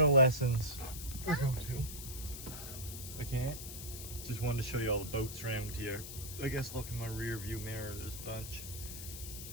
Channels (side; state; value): left; noise; hiss, 9 dB below the sound